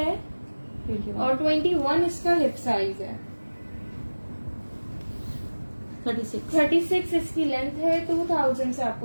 21, और 21 इसका हिप साइज है। 36। 36 इसकी लेंथ है। 2000 से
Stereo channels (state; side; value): inverted; both; correlation -1.00